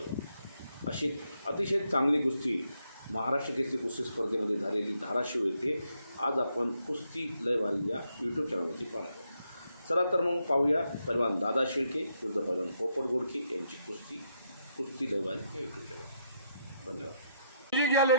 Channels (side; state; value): both; inverted; correlation -0.78